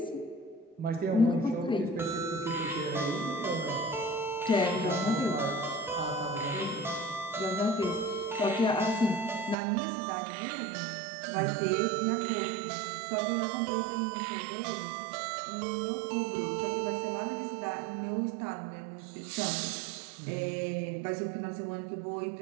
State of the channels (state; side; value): drops out; left; at 9.6 s